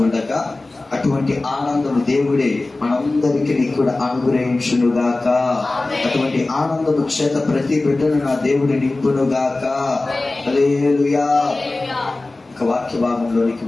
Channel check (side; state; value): right; quieter; 3.1 dB